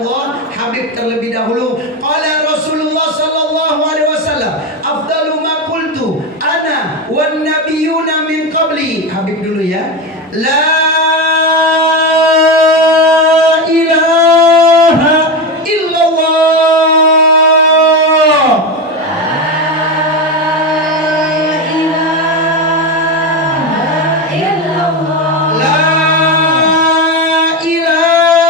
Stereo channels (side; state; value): both; normal; correlation 0.16